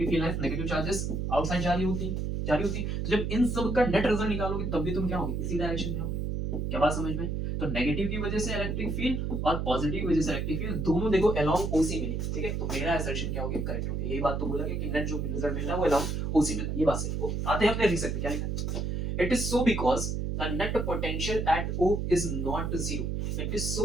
field lines negative charges outside जा रही होती। तो जब इन सब का नेट रिजल्ट निकालोगे तब भी तुम क्या होगे, इसी डायरेक्शन में होगे। क्या बात समझ में? तो नेगेटिव की वजह से इलेक्ट्रिक फील्ड और पॉजिटिव की वजह से इलेक्ट्रिक फील्ड दोनों देखो अलोंग OC मिली, ठीक है। तो मेरा असर्शन क्या हो गया, करेक्ट हो गया। यही बात तो बोला गया कि नेट जो रिजल्ट मिल रहा है वो अलोंग OC मिल रहा है, ये बात सही। ओके, आते हैं अपने रीजन पे, क्या लिखा है, it is so because the net potential at O is not zero. It is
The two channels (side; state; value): right; noise; hum, 1 dB below the sound